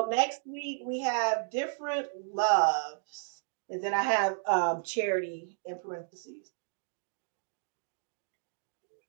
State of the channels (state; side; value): silent; left; digital silence